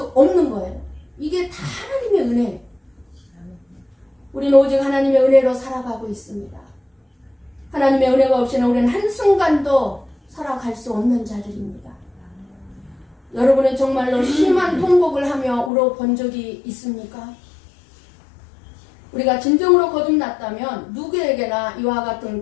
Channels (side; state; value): right; drops out; at 15.7 s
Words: 없는 거예요. 이게 다 하나님의 은혜예요. 우리는 오직 하나님의 은혜로 살아가고 있습니다. 하나님의 은혜가 없이는 우리는 한순간도 살아갈 수 없는 자들입니다. 여러분은 정말로 심한 통곡을 하며 울어본 적이 있습니까? 우리가 진정으로 거듭났다면 누구에게나 이와 같은